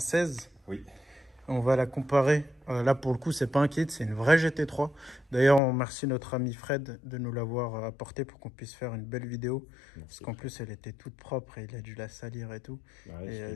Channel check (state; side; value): drops out; right; at 5.6 s